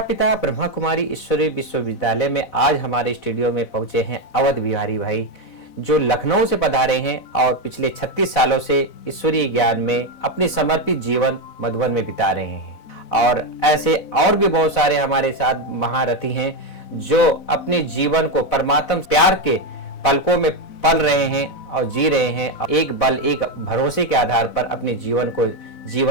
ब्रह्मा कुमारी ईश्वरी विश्वविद्यालय में आज हमारे स्टूडियो में पहुंचे हैं अवध बिहारी भाई, जो लखनऊ से पधारे हैं और पिछले 36 सालों से ईश्वरीय ज्ञान में अपने समर्पित जीवन मधुबन में बिता रहे हैं। और ऐसे और भी बहुत सारे हमारे साथ महारथी हैं जो अपने जीवन को परमात्मा प्यार के पलकों में पल रहे हैं और जी रहे हैं। एक बल एक भरोसे के आधार पर अपने जीवन को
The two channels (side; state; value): right; late; 4.0 ms